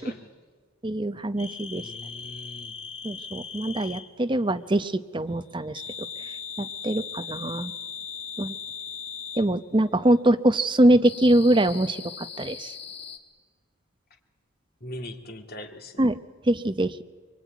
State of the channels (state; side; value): normal; both; correlation 0.74